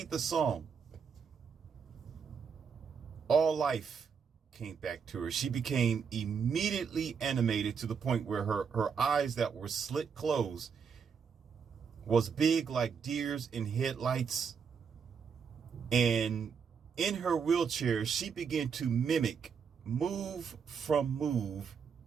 the song, all life came back to her. She became immediately animated to the point where her eyes that were slit closed was big like deers in headlights. And in her wheelchair, she began to mimic move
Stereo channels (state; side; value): quieter; left; 6.4 dB